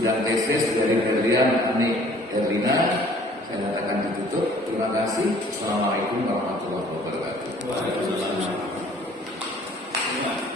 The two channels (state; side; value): normal; both; correlation 0.54